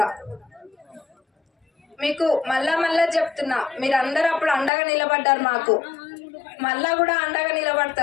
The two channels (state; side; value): drops out; right; at 4.7 s